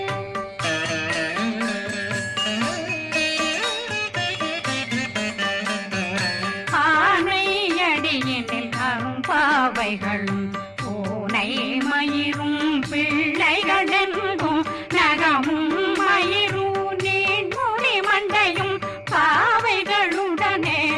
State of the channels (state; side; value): identical; both; correlation 1.00